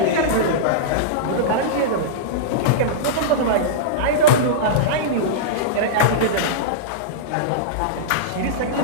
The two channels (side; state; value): both; different; correlation -0.04